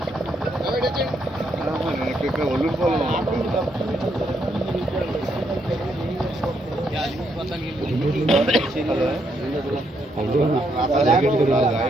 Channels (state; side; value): normal; both; correlation 0.76